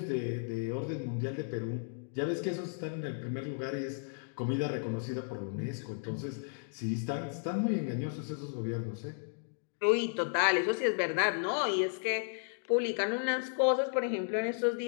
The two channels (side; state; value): right; silent; digital silence